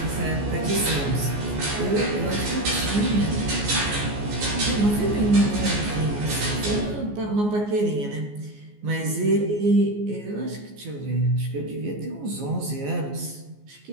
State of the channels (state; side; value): late; left; 14 ms